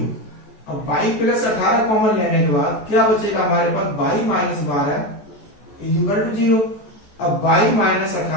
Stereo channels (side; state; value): right; late; 14 ms